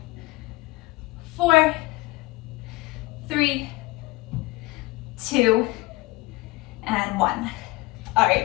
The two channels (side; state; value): right; quieter; 21.8 dB